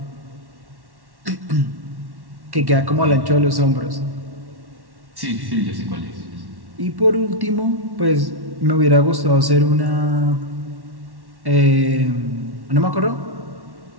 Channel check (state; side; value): late; left; 1.1 ms